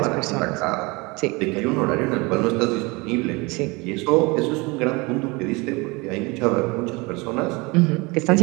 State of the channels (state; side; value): quieter; left; 25.7 dB